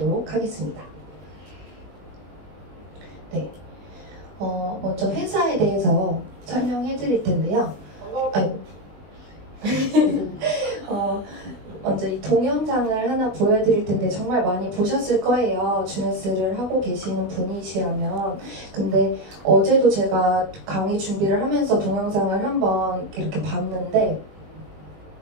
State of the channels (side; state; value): left; late; 20 ms